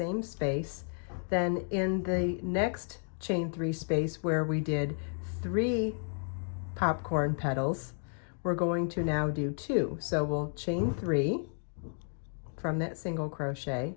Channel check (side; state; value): right; silent; 56 dB below the other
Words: space. Then in the next chain 3 space where we did 3 popcorn petals, we're going to now do 2. So we'll chain 3 from that single crochet,